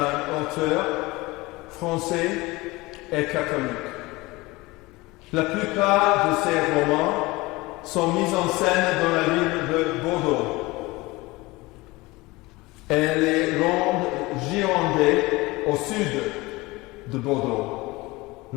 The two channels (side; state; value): right; quieter; 21.9 dB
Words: auteur français et catholique. La plupart de ses romans sont mis en scène dans la ville de Bordeaux et les Landes girondées au sud de Bordeaux,